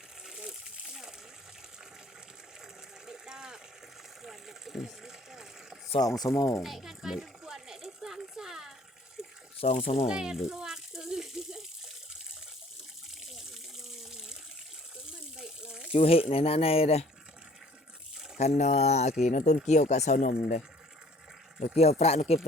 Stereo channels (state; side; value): normal; both; correlation 0.55